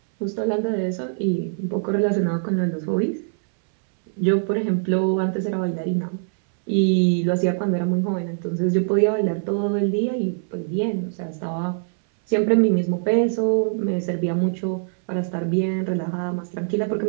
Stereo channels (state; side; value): silent; left; 62 dB below the other